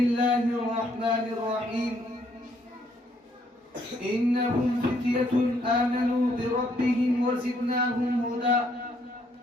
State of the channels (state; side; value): normal; both; correlation 0.69